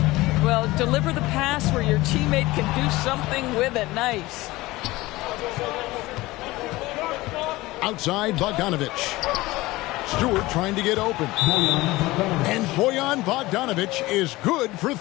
Well, deliver the pass where your teammate can do something with it. Nice. Outside, Bogdanovich. Stewart trying to get open. And Bojan Bogdanovich is good for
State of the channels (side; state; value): right; quieter; 19.6 dB